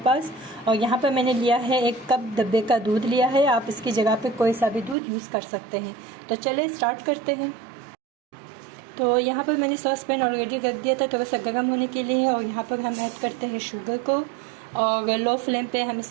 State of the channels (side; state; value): left; drops out; at 5.0 s